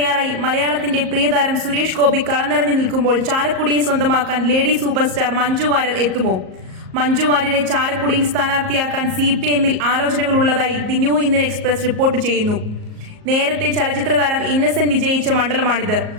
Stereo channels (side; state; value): left; late; 38 ms